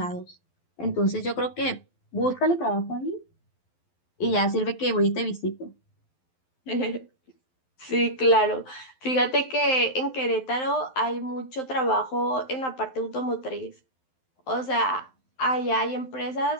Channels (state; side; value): late; right; 12 ms